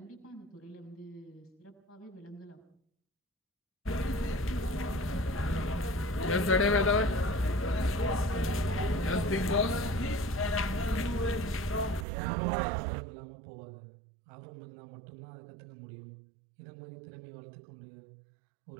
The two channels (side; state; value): left; drops out; at 12.1 s